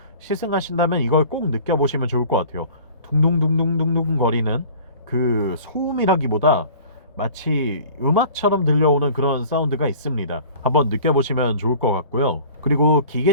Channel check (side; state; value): both; inverted; correlation -0.46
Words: 시승하신다면 이걸 꼭 느껴보시면 좋을 것 같아요. 둥둥둥둥둥둥 거리는 그 소음이라기보다 마치 음악처럼 들려오는 그런 사운드가 있습니다. 한번 느껴보시면 좋을 것 같고요. 그리고